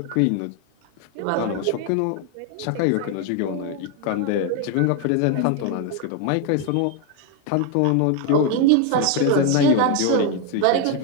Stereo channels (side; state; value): both; different; correlation 0.01